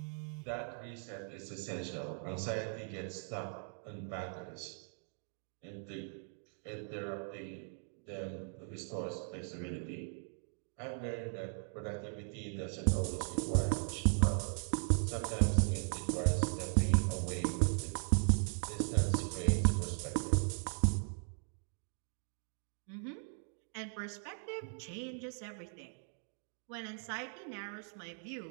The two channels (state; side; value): silent; left; 52 dB below the other